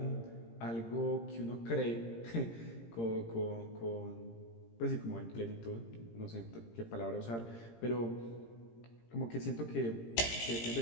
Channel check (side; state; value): right; late; 17 ms